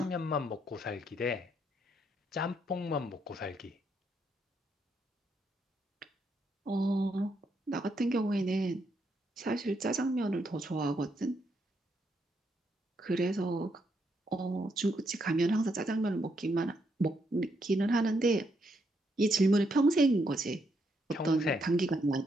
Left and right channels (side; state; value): both; normal; correlation 0.77